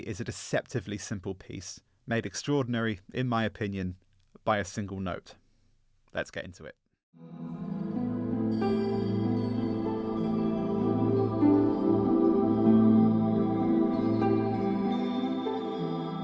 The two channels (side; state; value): both; identical; correlation 1.00